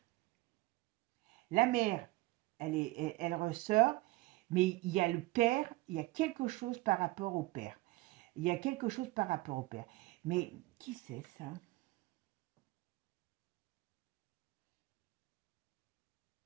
La mère, elle ressort, mais il y a le père, il y a quelque chose par rapport au père. Il y a quelque chose par rapport au père. Mais qui c'est ça?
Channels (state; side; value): quieter; left; 20.8 dB